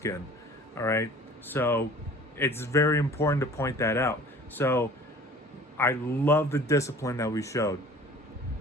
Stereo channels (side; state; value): both; normal; correlation 0.47